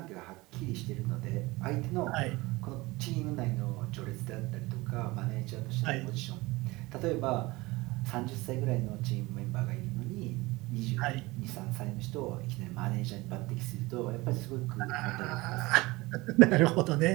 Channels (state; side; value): quieter; left; 21.7 dB